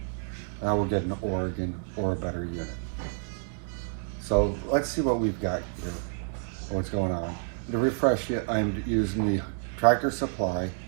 And I will get an Oregon or a better unit. So let's see what we've got here, what's going on. To refresh it, I'm using the Tractor Supply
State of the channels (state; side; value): silent; left; digital silence